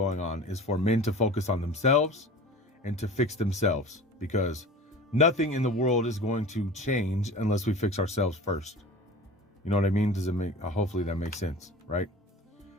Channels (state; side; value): normal; both; correlation 0.38